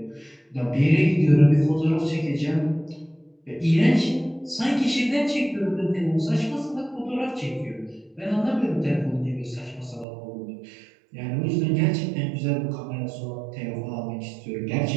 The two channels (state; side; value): drops out; left; at 10.1 s